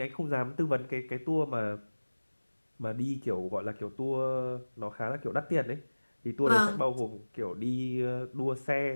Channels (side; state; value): both; inverted; correlation -1.00